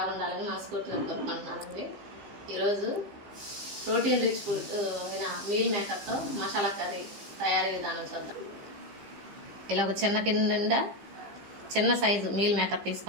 మనస్ఫూర్తిగా కోరుకుంటున్నానండి. ఈరోజు ప్రోటీన్ రిచ్ ఫుడ్ మీల్ మేకర్తో మసాలా కర్రీ తయారీ విధానం చూద్దాం. ఇలా ఒక చిన్న గిన్నె నిండా చిన్న సైజు మీల్ మేకర్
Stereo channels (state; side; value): late; left; 15 ms